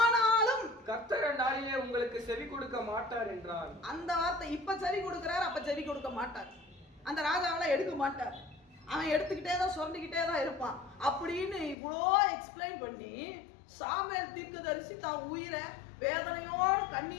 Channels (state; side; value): drops out; right; at 11.8 s